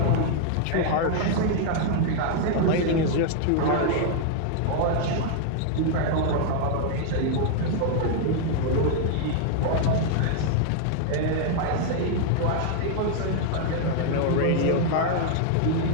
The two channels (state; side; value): different; both; correlation 0.00